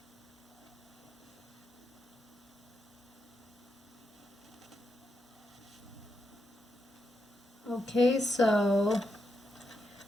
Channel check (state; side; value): normal; both; correlation 0.84